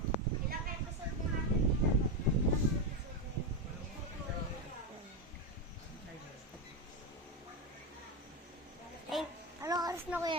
Anong oras na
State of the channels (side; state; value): both; normal; correlation 0.11